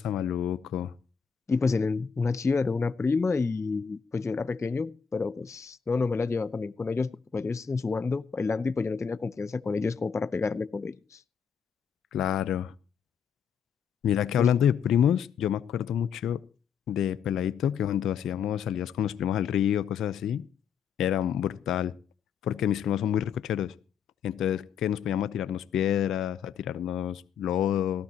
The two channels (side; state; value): right; quieter; 7.0 dB